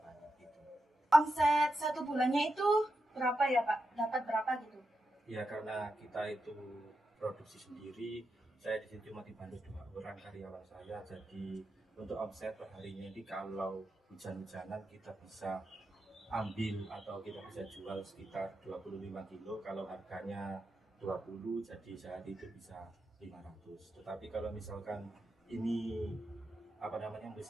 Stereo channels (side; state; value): both; normal; correlation 0.87